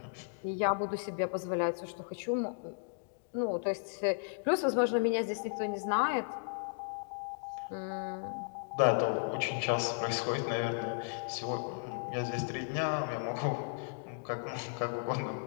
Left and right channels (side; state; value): right; silent; digital silence